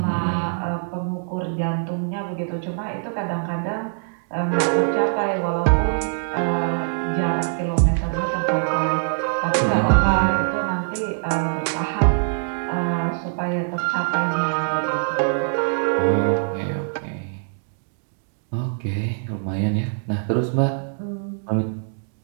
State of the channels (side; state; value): left; silent; digital silence